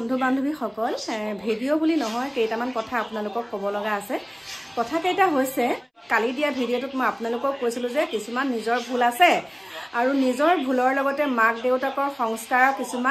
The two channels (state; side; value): identical; both; correlation 1.00